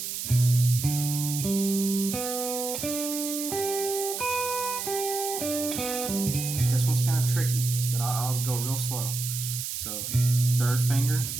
This one's kind of tricky, but I'll go real slow. So third finger,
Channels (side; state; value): right; noise; hiss, 5 dB below the sound